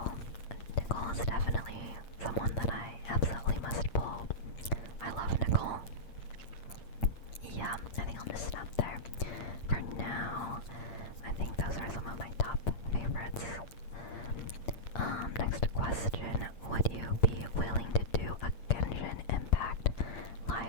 is definitely someone that I absolutely must pull. I love Nicole. Yeah, I think I'll just stop there. For now, I think those are some of my top favorites. Next question. Would you be willing to do a Genshin Impact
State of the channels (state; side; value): late; right; 8.7 ms